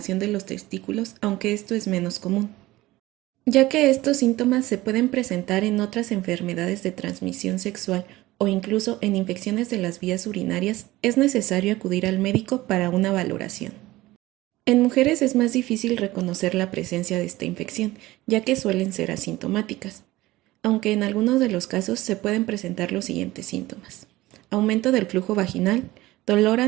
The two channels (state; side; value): quieter; left; 18.0 dB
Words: de los testículos, aunque esto es menos común. Ya que estos síntomas se pueden presentar en otras enfermedades de transmisión sexual o incluso en infecciones de las vías urinarias, es necesario acudir al médico para una valoración. En mujeres es más difícil reconocer la presencia de esta infección, ya que suelen ser asintomáticas, aunque en algunos de los casos se pueden presentar los siguientes síntomas: aumento del flujo vaginal, dolor